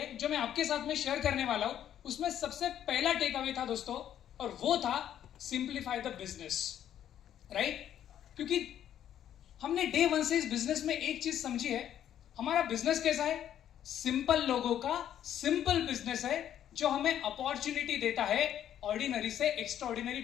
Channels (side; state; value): right; quieter; 10.5 dB